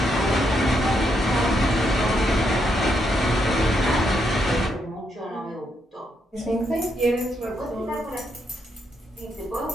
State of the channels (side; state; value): both; normal; correlation 0.78